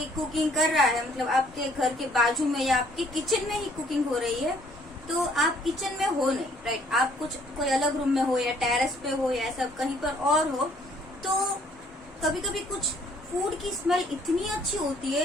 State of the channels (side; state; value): both; normal; correlation 0.62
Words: कुकिंग कर रहा है, मतलब आपके घर के बाजू में या आपके किचन में ही कुकिंग हो रही है, तो आप किचन में हो नहीं, राइट? आप कुछ कोई अलग रूम में हो या टेरेस पे हो या ऐसा कहीं पर और हो, तो कभी कभी कुछ फूड की स्मेल इतनी अच्छी होती